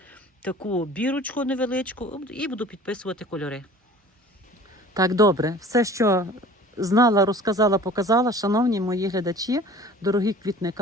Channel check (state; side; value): normal; both; correlation 0.45